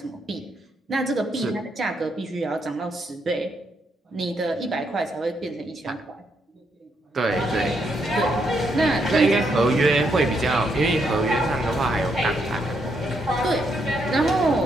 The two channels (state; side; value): normal; both; correlation 0.77